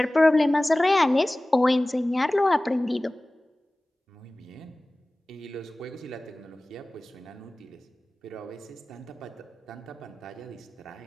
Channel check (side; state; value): both; normal; correlation 0.98